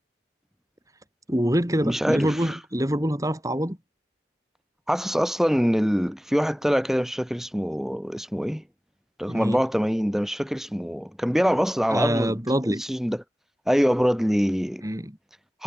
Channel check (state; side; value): normal; both; correlation 0.96